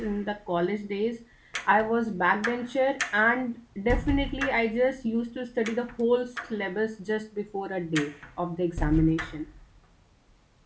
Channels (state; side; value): identical; both; correlation 1.00